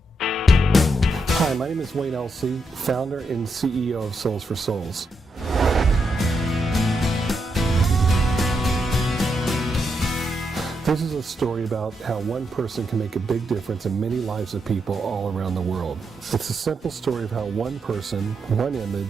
Hi, my name is Wayne Elsey, founder and CEO of Souls for Souls. This is a story about how one person can make a big difference in many lives of people all around the world. It's a simple story of how one person, one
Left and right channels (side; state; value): both; normal; correlation 0.82